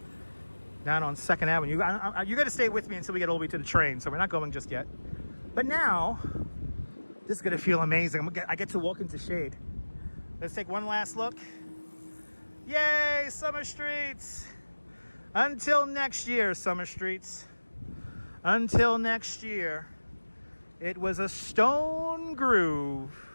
down on 2nd Avenue. You got to stay with me until we get all the way to the train, so we're not going just yet. But now, this is going to feel amazing. I get to walk into shade. Let's take one last look. Yay, Summer Streets! Until next year, Summer Streets. Until next year. It was a stone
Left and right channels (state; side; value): inverted; both; correlation -1.00